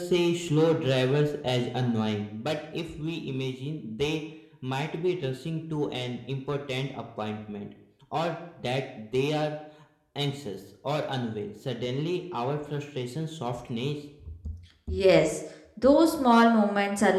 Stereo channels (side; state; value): both; identical; correlation 1.00